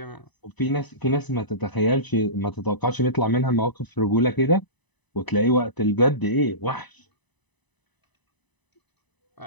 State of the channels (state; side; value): late; right; 1.0 ms